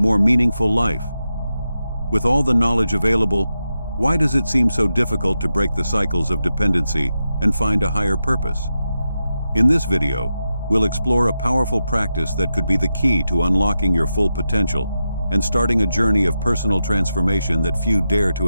meaningful life? With all the knowledge available, why does it seem so difficult to break the cycles of dependency and find a higher purpose? In this video, we'll explore a powerful practice that could be the key to unlocking your full potential and starting a journey of personal transformation that few dare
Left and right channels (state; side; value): inverted; both; correlation -0.89